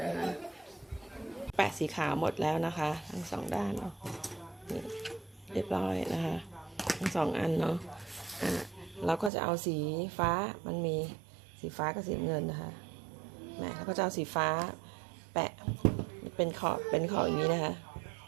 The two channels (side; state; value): left; drops out; at 9.3 s